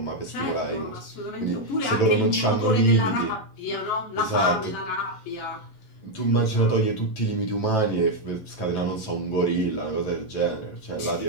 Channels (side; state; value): right; late; 11 ms